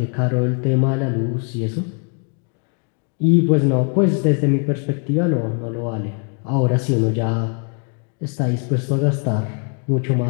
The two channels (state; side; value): quieter; right; 38.6 dB